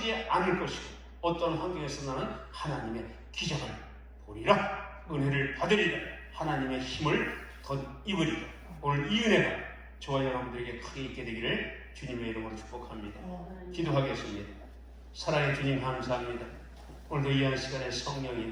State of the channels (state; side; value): identical; both; correlation 1.00